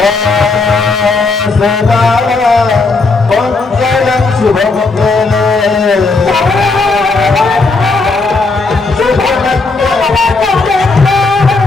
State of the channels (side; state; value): right; quieter; 3.8 dB